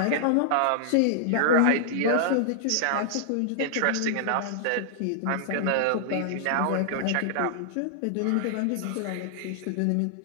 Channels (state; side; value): different; both; correlation -0.01